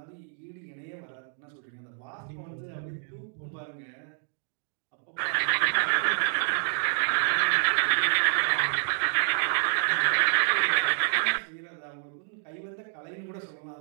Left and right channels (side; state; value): left; silent; digital silence